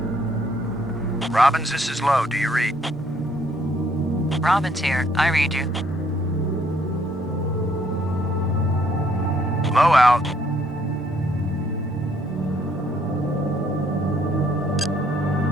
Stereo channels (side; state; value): both; normal; correlation 0.67